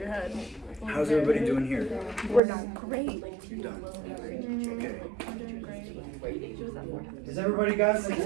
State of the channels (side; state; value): left; drops out; at 2.4 s